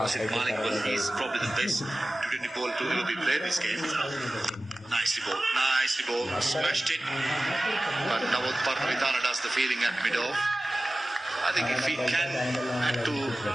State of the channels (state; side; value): normal; both; correlation 0.96